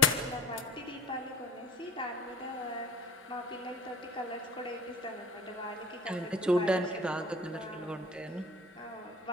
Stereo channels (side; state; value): both; normal; correlation 0.45